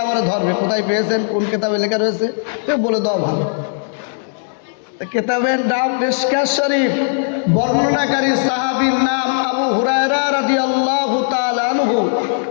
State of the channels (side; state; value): right; silent; digital silence